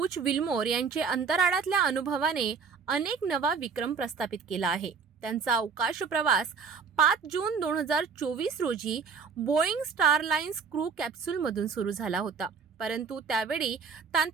विल्मोर यांचे अंतराळातल्या अनुभवाने अनेक नवा विक्रम प्रस्थापित केला आहे। त्यांचा अवकाश प्रवास 5 जून 2024 रोजी बोईंग स्टारलाइन्स क्रू कॅप्सूलमधून सुरू झाला होता, परंतु त्यावेळी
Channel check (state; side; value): quieter; left; 5.8 dB